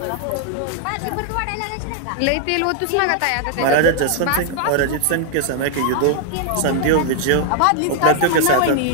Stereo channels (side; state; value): both; different; correlation 0.00